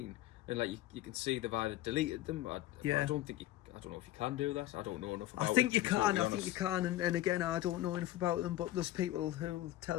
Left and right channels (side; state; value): right; quieter; 15.0 dB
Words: And like you can see they've either deleted them. I don't know if you can do that. I don't know enough about it. I think you can. And again, I don't know enough about them. But there's people who'll